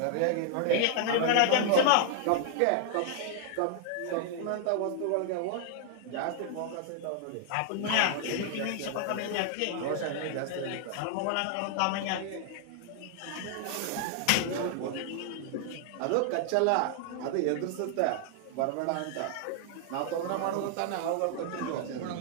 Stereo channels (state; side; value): different; both; correlation 0.00